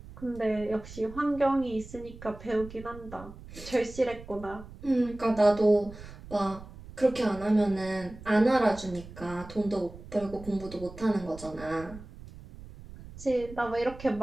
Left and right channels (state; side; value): noise; right; rumble, 16 dB below the sound